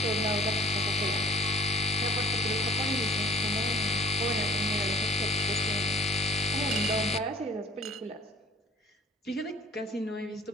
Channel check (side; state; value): both; normal; correlation 0.48